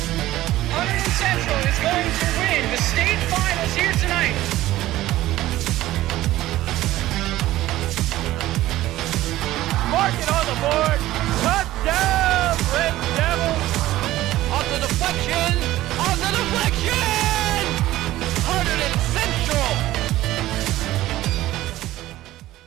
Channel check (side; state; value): left; quieter; 15.6 dB